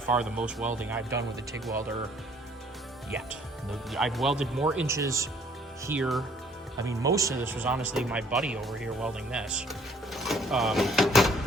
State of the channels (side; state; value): both; normal; correlation 0.59